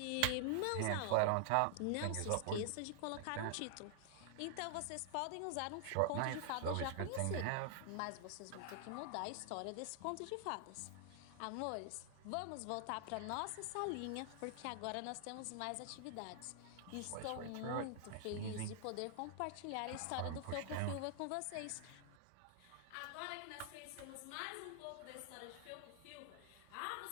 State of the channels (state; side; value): different; both; correlation 0.00